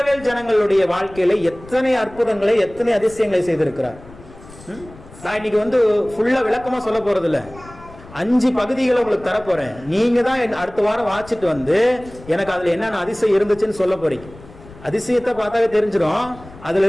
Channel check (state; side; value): noise; left; rumble, 20 dB below the sound